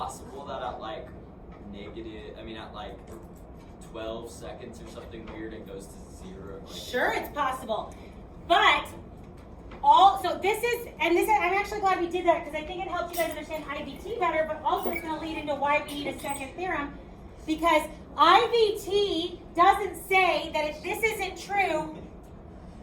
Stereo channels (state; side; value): identical; both; correlation 1.00